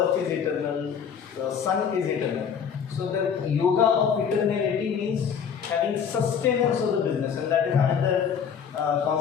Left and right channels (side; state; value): right; quieter; 7.2 dB